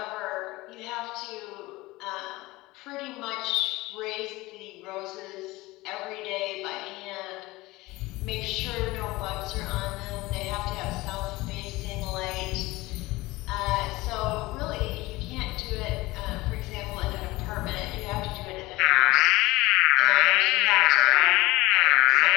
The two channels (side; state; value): right; quieter; 20.3 dB